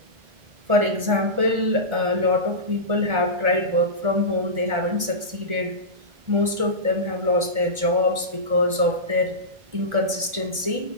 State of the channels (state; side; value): late; left; 1.4 ms